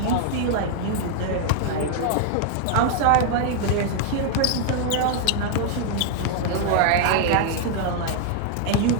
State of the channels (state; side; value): different; both; correlation 0.00